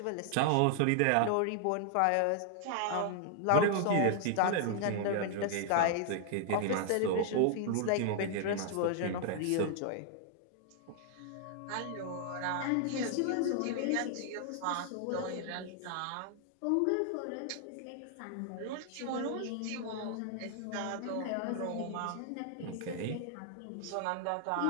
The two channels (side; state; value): both; different; correlation 0.00